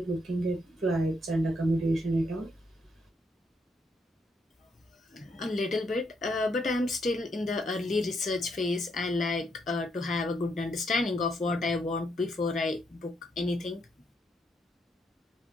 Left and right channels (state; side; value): normal; both; correlation 0.76